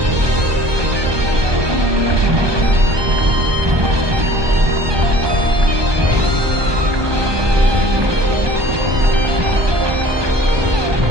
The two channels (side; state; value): left; late; 1.2 ms